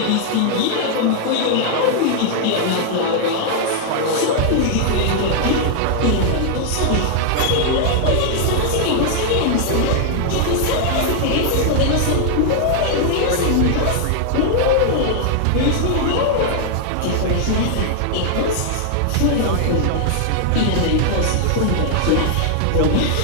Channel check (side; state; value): both; different; correlation 0.00